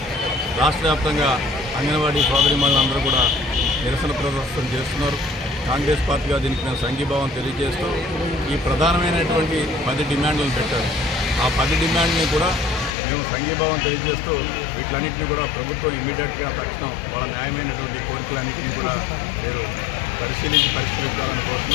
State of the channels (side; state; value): right; drops out; at 13.0 s